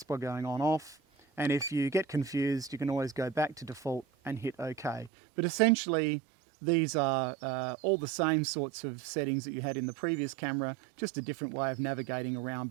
by going on off, and if you get confused, you can always go back to default and hit OK. But essentially, these are all the same sorts of settings that you had in the previous camera, just a different way of navigating around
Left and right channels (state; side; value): drops out; left; at 5.1 s